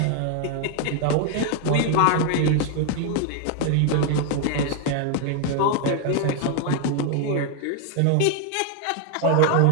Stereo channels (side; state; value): both; different; correlation 0.00